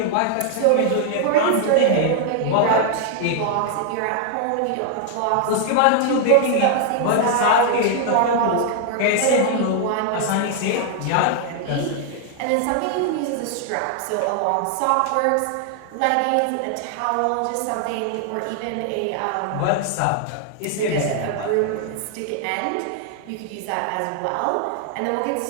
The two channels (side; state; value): both; different; correlation 0.00